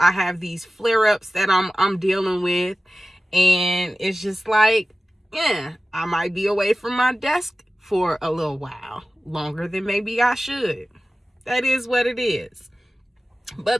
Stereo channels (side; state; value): both; normal; correlation 0.96